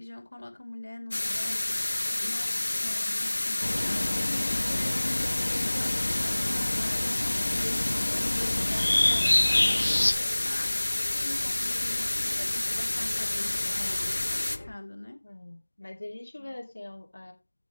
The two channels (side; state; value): both; inverted; correlation -1.00